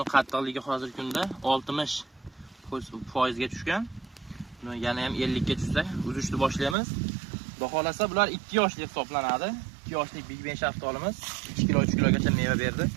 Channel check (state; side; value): drops out; left; at 6.8 s